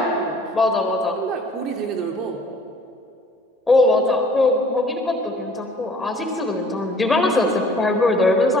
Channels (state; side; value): normal; both; correlation 0.54